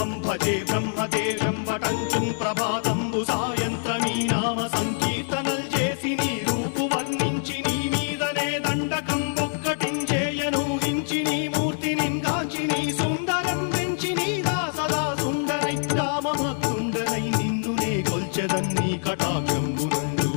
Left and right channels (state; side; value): silent; right; 62 dB below the other